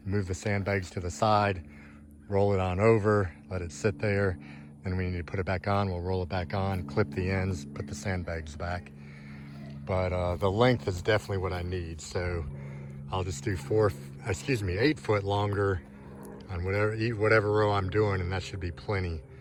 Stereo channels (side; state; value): both; identical; correlation 1.00